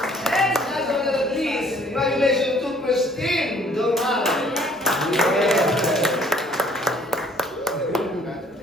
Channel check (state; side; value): normal; both; correlation 0.59